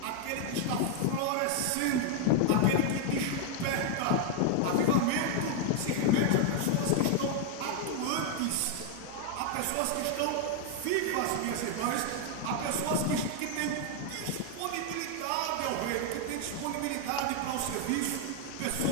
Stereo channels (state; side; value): different; both; correlation 0.00